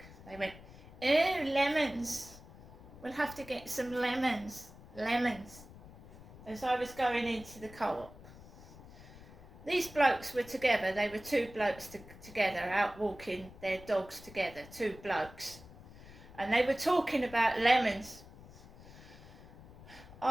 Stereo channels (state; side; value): noise; left; rumble, 18 dB below the sound